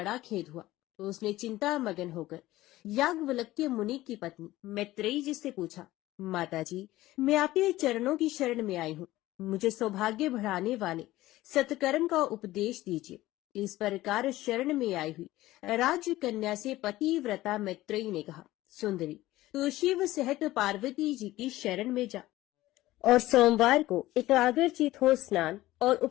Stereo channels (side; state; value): right; quieter; 16.7 dB